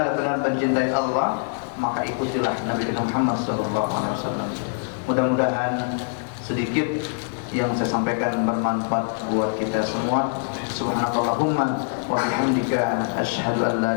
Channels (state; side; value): silent; right; digital silence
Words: mencintai Allah, maka ikutilah Nabi kita Muhammad SAW. Mudah-mudahan sedikit yang saya sampaikan bermanfaat buat kita semua. Subhanakallahumma wa bihamdika asyhadu an